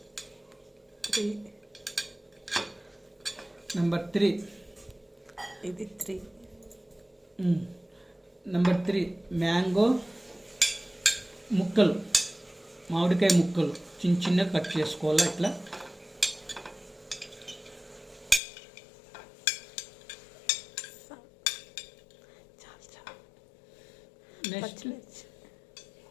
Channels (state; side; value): drops out; right; at 18.4 s